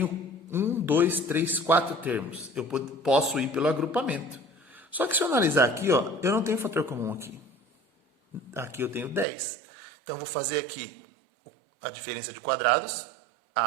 1, 2, 3, 4 termos. Eu posso ir pelo agrupamento. Só que se eu analisar aqui, ó, eu não tenho fator comum aqui. Aqui eu tenho 10. Então, eu vou fazer aqui a diferença de quadrados,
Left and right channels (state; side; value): drops out; left; at 9.2 s